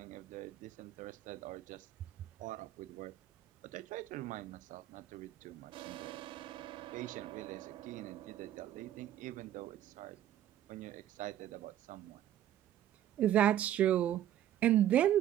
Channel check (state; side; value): quieter; left; 11.8 dB